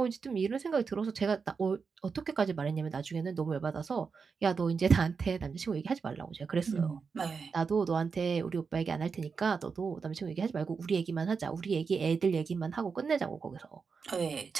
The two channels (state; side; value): quieter; left; 5.4 dB